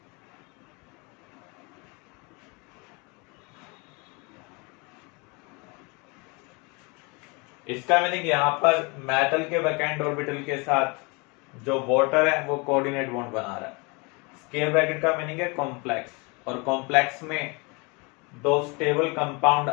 इसका मीनिंग यहां पर मेटल के वैकेंट ऑर्बिटल के साथ जो वाटर है वो कोऑर्डिनेट बॉन्ड बना रहा है। स्क्वायर ब्रैकेट का मीनिंग है कॉम्प्लेक्स, और कॉम्प्लेक्स में दो स्टेबल कंपाउंड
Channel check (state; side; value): quieter; right; 29.2 dB